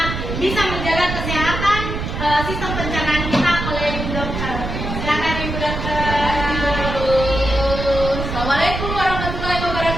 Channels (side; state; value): right; noise; rumble, 5 dB below the sound